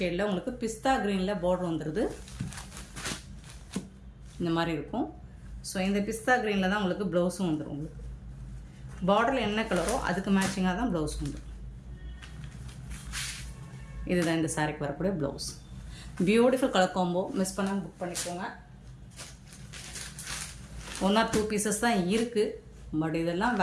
உங்களுக்கு பிஸ்தா க்ரீனில் பார்டர் வந்துடுது. இந்த மாதிரி இருக்கும். ஸோ இந்த பிஸ்தா க்ரீனில் தான் உங்களுக்கு ப்ளவுஸும் வந்துடும். உங்களுக்கு பார்டரில் என்ன கலரோ அதுக்கு மேட்சிங்காக தான் ப்ளவுஸ் வந்துடும். இதுதான் இந்த சாரிக்கு வரக்கூடிய blouse. Beautiful colour combo. Miss பண்ணாமல் புக் பண்ணிக்கோங்க. 1 or 2 பீசஸ் தான் இருக்குது. பட் இதெல்லாம்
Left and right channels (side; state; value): both; identical; correlation 1.00